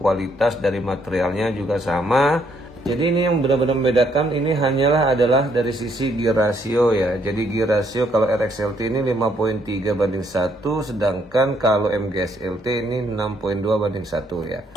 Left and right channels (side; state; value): both; normal; correlation 0.70